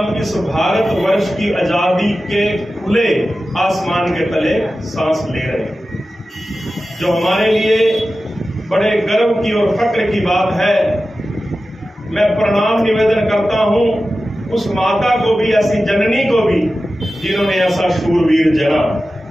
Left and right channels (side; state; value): both; normal; correlation 0.94